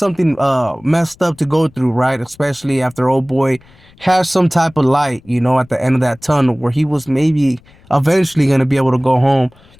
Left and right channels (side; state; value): left; noise; rumble, 28 dB below the sound